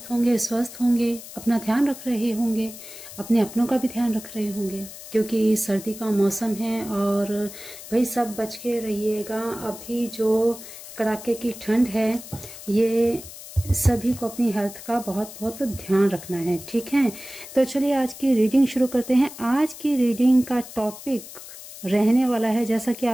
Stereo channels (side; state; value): left; noise; hiss, 14 dB below the sound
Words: होंगे, स्वस्थ होंगे, अपना ध्यान रख रहे होंगे, अपने अपनों का भी ध्यान रख रहे होंगे क्योंकि सर्दी का मौसम है और भाई सब बच के रहिएगा। अभी जो कड़ाके की ठंड है ये सभी को अपनी हेल्थ का बहुत बहुत ध्यान रखना है, ठीक है। तो चलिए आज की रीडिंग शुरू करते हैं। आज की रीडिंग का टॉपिक रहने वाला है, जैसा कि